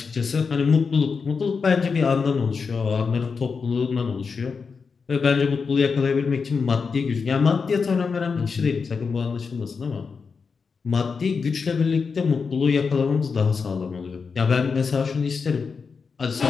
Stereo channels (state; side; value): quieter; right; 5.3 dB